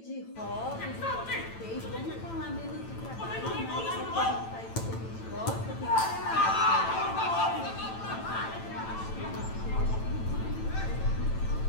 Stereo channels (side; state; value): right; late; 9.0 ms